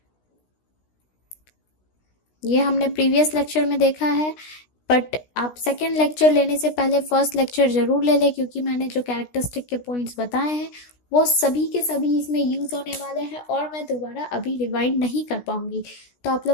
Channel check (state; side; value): late; right; 16 ms